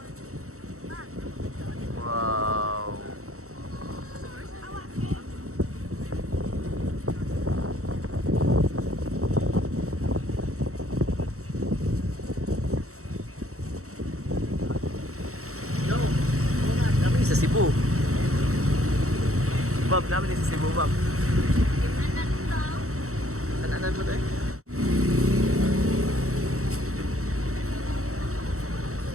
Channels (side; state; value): left; late; 0.64 ms